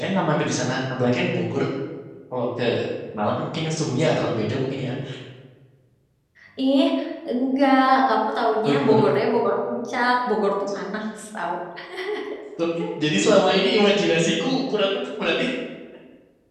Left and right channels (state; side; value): identical; both; correlation 1.00